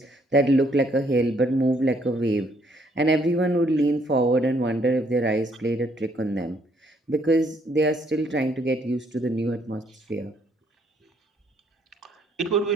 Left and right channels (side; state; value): both; normal; correlation 0.68